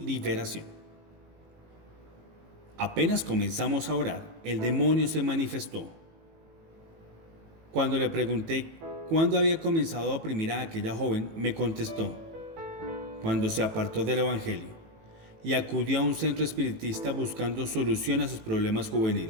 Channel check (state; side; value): late; left; 18 ms